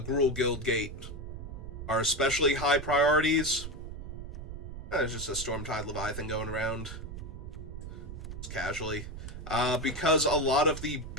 Guildgate are especially high priorities. There's just a Stormtide Leviathan going around. Just casually. Because a lot of the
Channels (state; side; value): noise; right; rumble, 9 dB below the sound